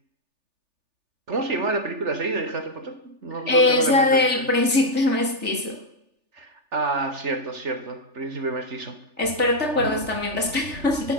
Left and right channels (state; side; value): late; left; 3.4 ms